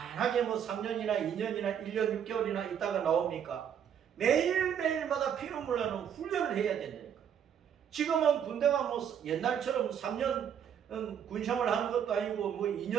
3년이나 2년이나 1년 6개월이나 있다가 나옵니까? 매일매일마다 피눈물 나는 훈련을 해야 된다니까. 지금은 군대가 옛날처럼 3년 군생활 하는 것도 아니고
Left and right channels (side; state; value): left; quieter; 8.6 dB